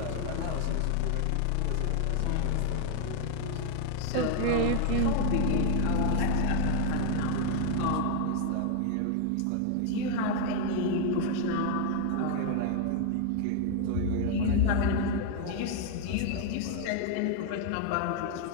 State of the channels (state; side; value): different; both; correlation 0.00